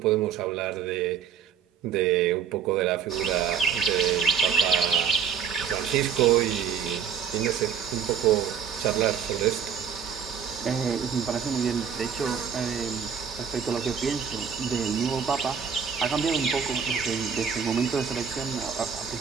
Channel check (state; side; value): quieter; left; 7.4 dB